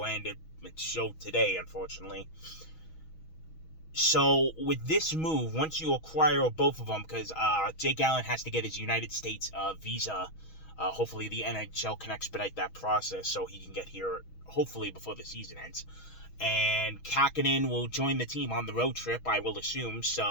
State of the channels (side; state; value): right; late; 6.2 ms